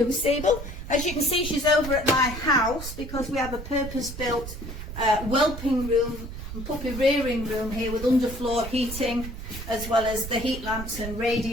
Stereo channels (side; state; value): right; noise; rumble, 9 dB below the sound